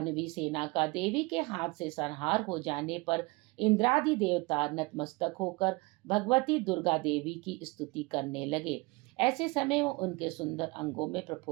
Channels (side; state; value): left; quieter; 25.3 dB